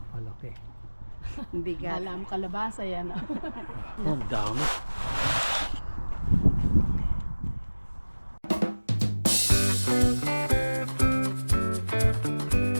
kalaki. Bigat. Alam kalabasa yan. Oh, ang dami.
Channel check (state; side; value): inverted; both; correlation -1.00